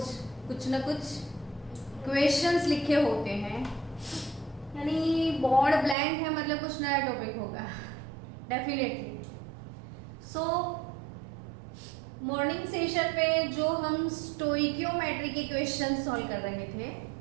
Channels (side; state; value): left; drops out; at 6.0 s